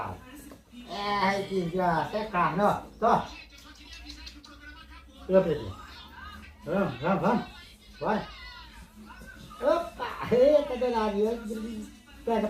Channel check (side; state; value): both; identical; correlation 1.00